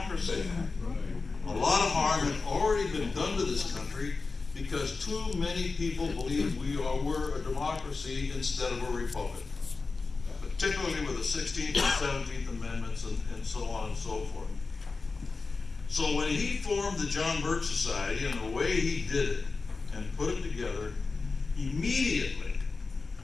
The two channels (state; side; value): quieter; right; 4.1 dB